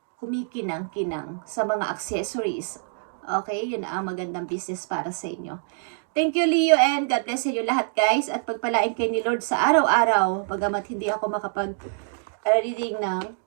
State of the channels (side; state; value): left; silent; digital silence